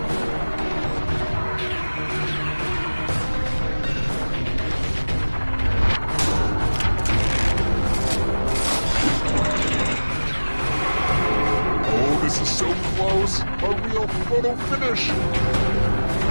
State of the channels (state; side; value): inverted; both; correlation -1.00